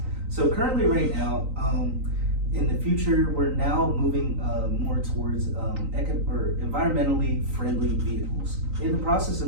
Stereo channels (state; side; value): late; left; 3.9 ms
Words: So currently right now, in the future, we're now moving more towards environmentally friendly vehicles. In the process